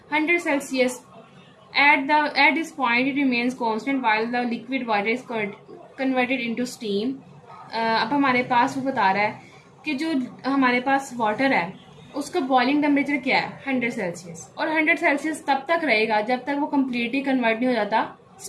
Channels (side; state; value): both; identical; correlation 1.00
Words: 100 Celsius. At this point, it remains constant while the liquid water is converted into steam. अब हमारे पास वो बता रहा है कि जो हमारे पास वाटर है उसका बॉइलिंग टेम्परेचर क्या है, 100 सेल्सियस, और 100 सेल्सियस तब तक रहेगा जब तक वो कम्प्लीटली कन्वर्ट नहीं हो जाता